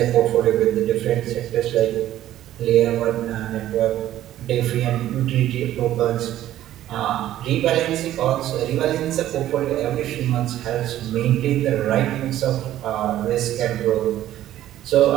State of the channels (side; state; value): left; quieter; 13.0 dB